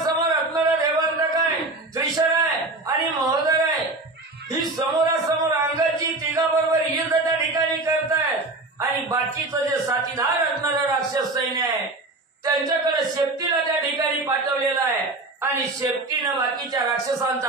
असणारा देवांतक आहे, त्रिशरा आहे आणि महोदर आहे. ही समोरासमोर अंगदजी तिघाबरोबर युद्ध त्या ठिकाणी करतायत आणि बाकीचं जे साथीदार असणारं राक्षस सैन्य आहे त्यांच्याकडे शेपटीला त्या ठिकाणी पाठवलेला आहे आणि शेपटीनं बाकीच्या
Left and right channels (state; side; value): quieter; left; 3.0 dB